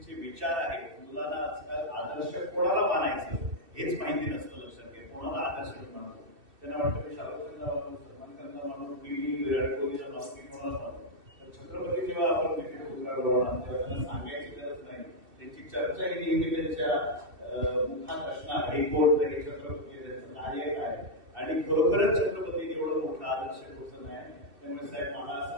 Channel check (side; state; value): left; late; 2.7 ms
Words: विचार आहेत. मुलांना आजकाल आदर्श कोणाला मानायचं हेच माहिती नसतं. लक्षात घ्या, कोणाला आदर्श मानतो. त्यांना वाटतं मी शाहरुखला मानू, सलमान खानला मानू, मी विराट कोहलीला मानू, मी कोणाला मानू. तर छत्रपती जेव्हा आपण तिथे पुतळा बनवणार तेव्हा त्यांना सांगायची गरज नाही. त्यांची चर्चा ही नेहमी त्यांच्या मुखात असणार, हे कोण तरी छत्रपती, त्यांचं कार्य काय. आणि खरोखरच छत्रपती एवढं मोठं आदर्श पोचन आहे. त्यामुळे साहेब मला